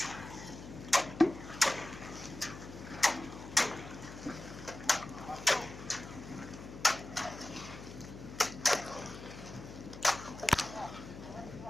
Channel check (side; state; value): left; noise; hum, 13 dB below the sound